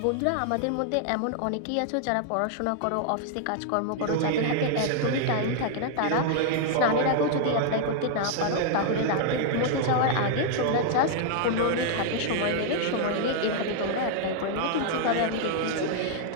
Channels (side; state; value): both; different; correlation 0.00